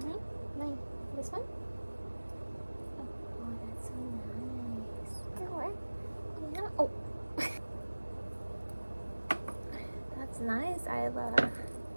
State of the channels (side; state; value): both; inverted; correlation -1.00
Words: Mine. This one? Oh, that's so nice. Oh, yeah. Oh. That's nice, Isla. That's